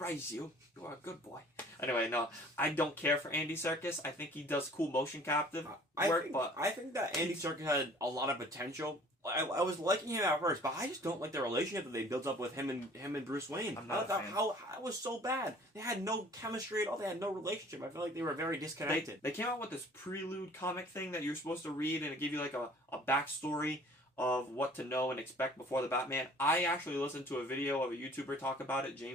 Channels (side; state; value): both; normal; correlation 0.51